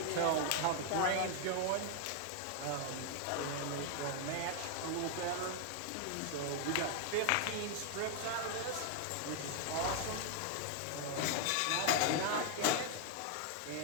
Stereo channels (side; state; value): both; different; correlation 0.00